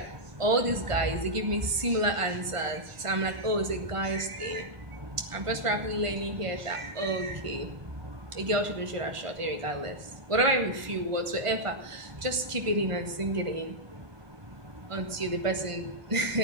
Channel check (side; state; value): left; late; 1.5 ms